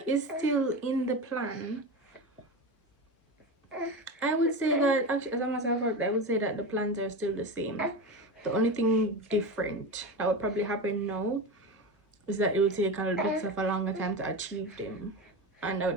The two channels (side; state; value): both; normal; correlation 0.23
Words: is still in the plan. I would say that actually, as a matter of fact, I would say that the plans are still the same. The only thing different that would probably happen now is that it will take a little bit of a longer time to achieve them, and